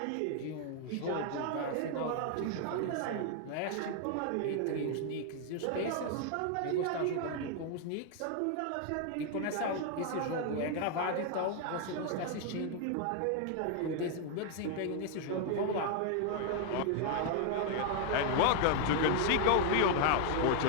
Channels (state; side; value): different; both; correlation 0.00